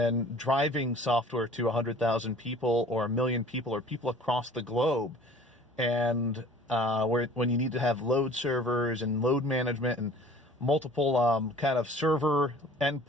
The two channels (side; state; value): both; normal; correlation 0.48